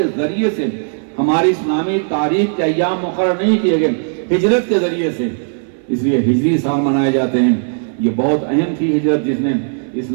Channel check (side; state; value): left; silent; 61 dB below the other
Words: ذریعے سے ہماری اسلامی تاریخ کے ایام مقرر نہیں کیے گئے، ہجرت کے ذریعے سے۔ اس لیے ہجری سال منائے جاتے ہیں۔ یہ بہت اہم تھی ہجرت، جس نے